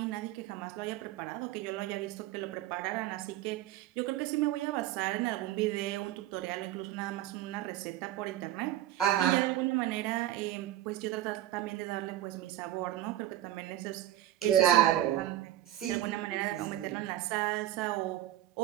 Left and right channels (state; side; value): quieter; left; 13.8 dB